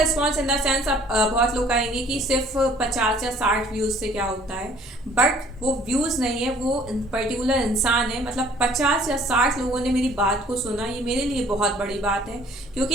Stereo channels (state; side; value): normal; both; correlation 0.56